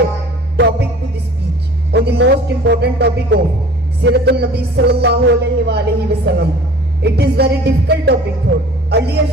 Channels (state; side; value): normal; both; correlation 0.46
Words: topic to the speech on the most important topic of Siratul Nabi sallallahu alaihi wa sallam. It is very difficult topic for earlier